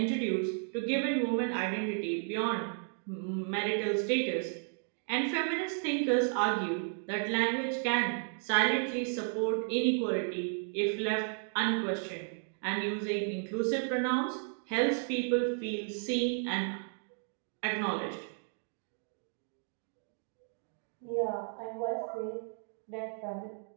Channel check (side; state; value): left; silent; 55 dB below the other